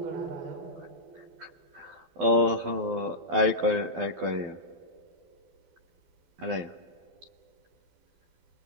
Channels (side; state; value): left; late; 12 ms